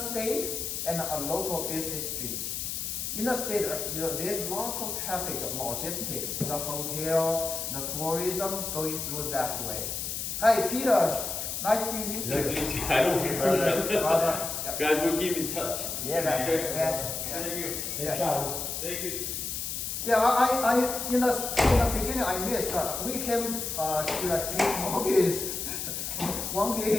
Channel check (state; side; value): noise; left; hiss, 4 dB below the sound